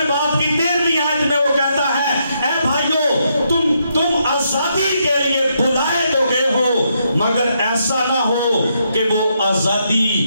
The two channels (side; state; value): both; inverted; correlation -0.78